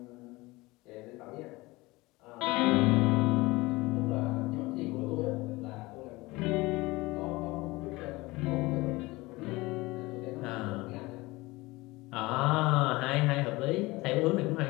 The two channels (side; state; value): right; quieter; 21.6 dB